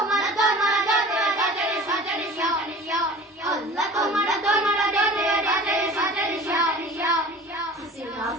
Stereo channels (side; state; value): both; normal; correlation 0.41